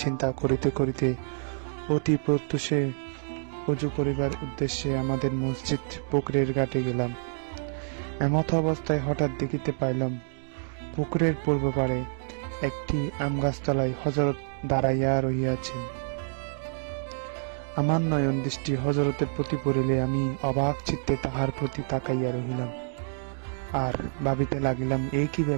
চিন্তা করিতে করিতে অতি প্রত্যুষে ওযু করিবার উদ্দেশ্যে আমাদের মসজিদ পুকুরের ঘাটে গেলাম। এমত অবস্থায় হঠাৎ দেখিতে পাইলাম পুকুরের পূর্ব পাড়ে একটি আমগাছতলায় হযরত দাঁড়াইয়া রহিয়াছেন। আমার নয়ন দৃষ্টি হযরতের প্রতি পড়িলে আমি অবাক চিত্তে তাহার প্রতি তাকাইয়া রহিলাম, আর ভাবিতে লাগিলাম, এই কি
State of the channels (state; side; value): silent; left; digital silence